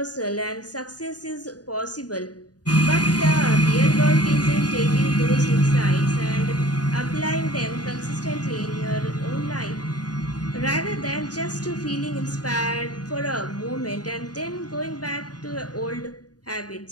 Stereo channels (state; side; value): late; right; 0.68 ms